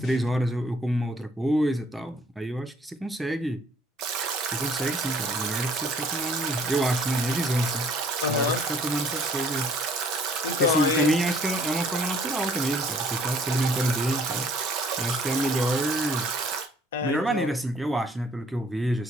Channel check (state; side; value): normal; both; correlation 0.58